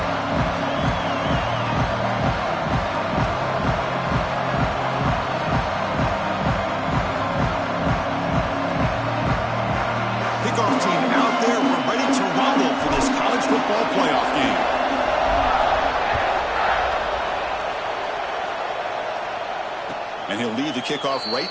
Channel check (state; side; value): identical; both; correlation 1.00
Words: And he'll lead the kickoff right